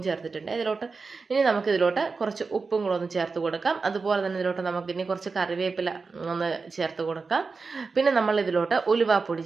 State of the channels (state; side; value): quieter; left; 4.5 dB